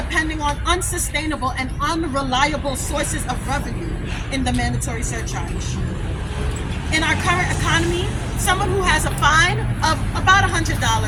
on unsustainable and unreliable sources of revenue in the mandatory surcharge? In our current economy, someone who has a fine of about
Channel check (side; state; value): both; identical; correlation 1.00